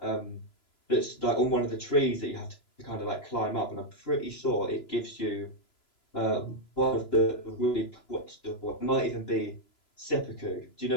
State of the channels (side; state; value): right; late; 3.0 ms